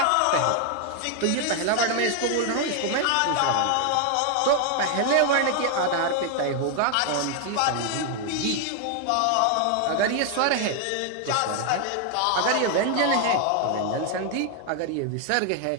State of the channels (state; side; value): different; both; correlation 0.00